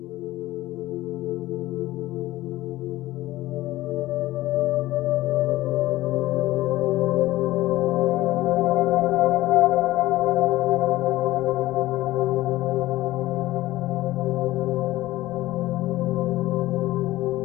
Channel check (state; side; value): quieter; right; 16.8 dB